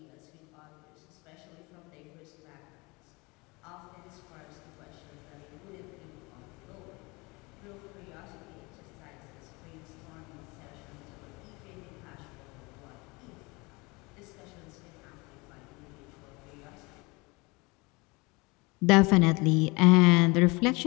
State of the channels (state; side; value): quieter; right; 25.9 dB